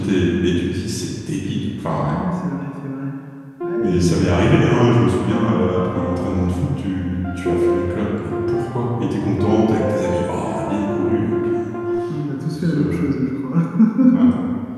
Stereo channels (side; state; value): both; identical; correlation 1.00